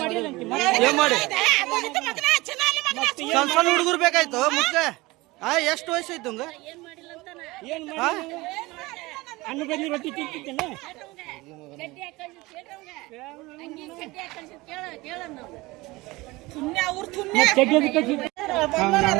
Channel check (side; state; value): left; quieter; 21.5 dB